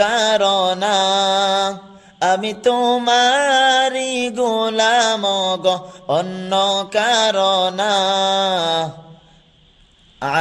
আমি তোমারি গোলাম গো অন্য কারণা।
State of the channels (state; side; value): identical; both; correlation 1.00